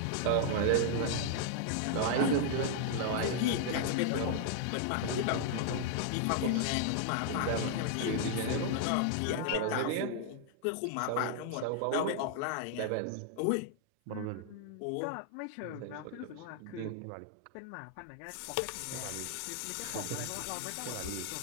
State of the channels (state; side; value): different; both; correlation -0.01